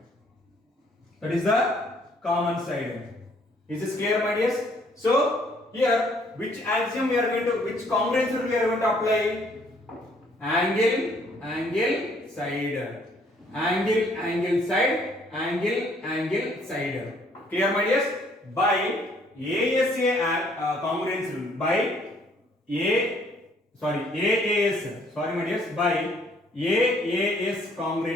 That is the common side. Is this clear, my dears? So here, which axiom we are going to, which congruence rule we are going to apply? Angle, side. angle side. Clear, my dears? By ASA congruence rule, by AAS, sorry my dears, by AAS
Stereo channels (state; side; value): normal; both; correlation 0.63